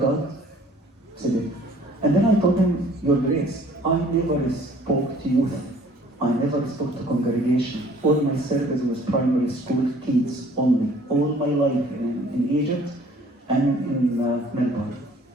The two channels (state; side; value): normal; both; correlation 0.55